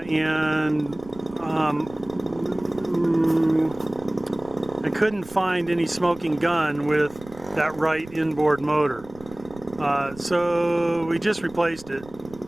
I couldn't find any smoking gun with that right inboard motor. So we just replaced it.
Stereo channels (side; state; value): right; noise; rumble, 20 dB below the sound